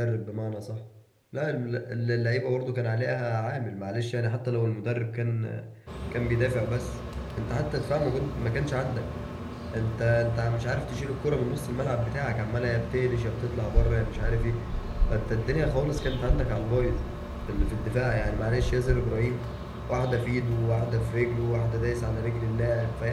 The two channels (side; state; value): both; identical; correlation 1.00